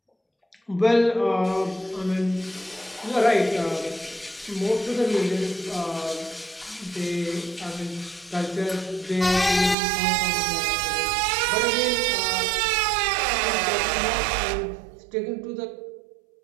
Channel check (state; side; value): drops out; left; at 9.8 s